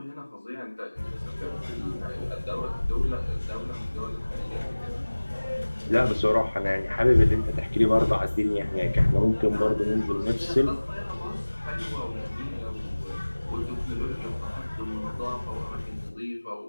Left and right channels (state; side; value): inverted; both; correlation -1.00